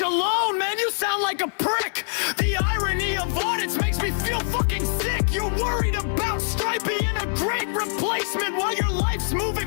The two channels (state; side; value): silent; right; digital silence